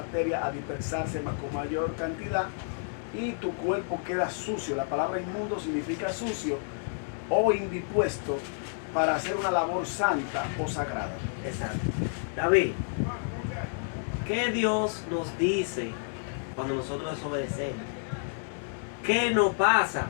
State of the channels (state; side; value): silent; right; digital silence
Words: a dispersarse más con mayor cantidad y tu cuerpo queda sucio. La palabra inmundo significa sucio o indispuesto para hacer una labor santa o sagrada. Exacto. David, ¿qué Dios nos dice cuando nosotros desobedecemos? ¿Qué nos pasa?